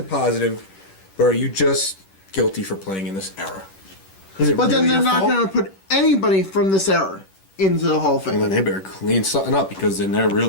positive, but are you just guilty for playing in this era? Is it But then really they're your not fault? going to put anybody from this era into the Hall of Well, Fame. then they better clean something up because then they're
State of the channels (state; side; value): late; right; 10 ms